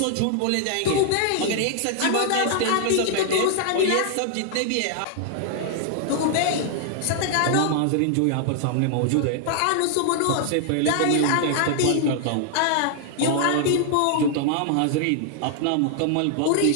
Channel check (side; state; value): both; different; correlation 0.00